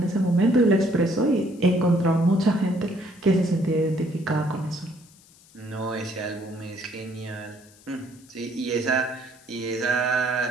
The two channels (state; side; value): noise; left; hiss, 26 dB below the sound